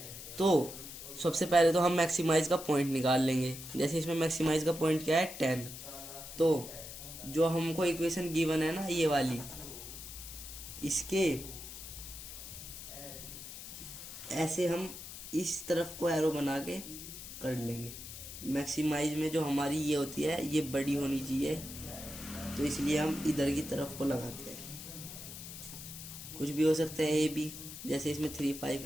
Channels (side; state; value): left; noise; hiss, 11 dB below the sound